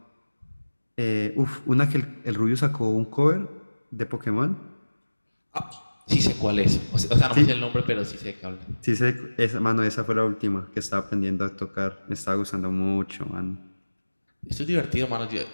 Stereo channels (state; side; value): inverted; both; correlation -1.00